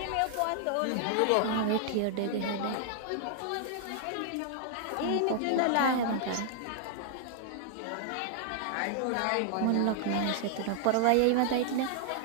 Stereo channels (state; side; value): different; both; correlation 0.00